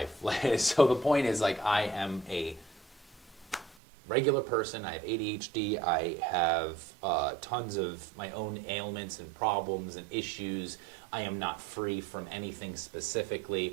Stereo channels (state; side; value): drops out; left; at 3.8 s